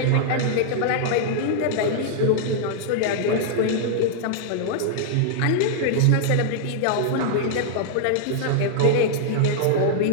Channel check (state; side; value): different; both; correlation -0.01